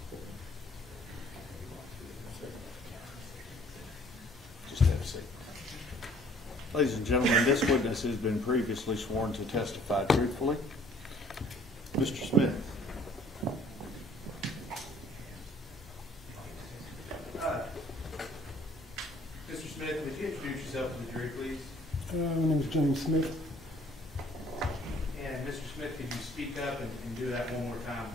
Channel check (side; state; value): both; normal; correlation 0.57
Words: Just have a seat. Ladies and gentlemen, this witness has been previously sworn to testify truthfully. Mr. Smith. Mr. Smith, would you introduce yourself to the jury, please? My name is James Smith. And speak up and do that one more time?